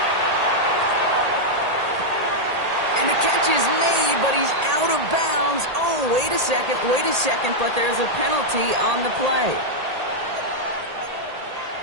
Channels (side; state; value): left; late; 1.8 ms